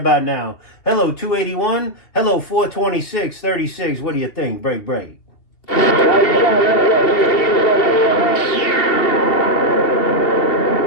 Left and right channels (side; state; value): right; late; 2.8 ms